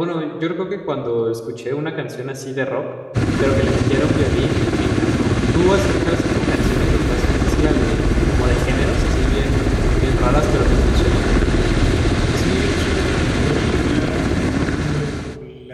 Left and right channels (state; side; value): identical; both; correlation 1.00